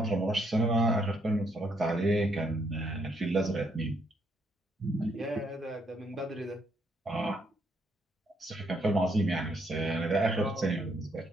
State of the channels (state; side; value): normal; both; correlation 0.72